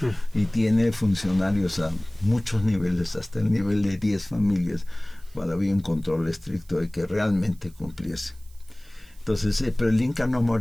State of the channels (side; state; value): right; noise; hiss, 28 dB below the sound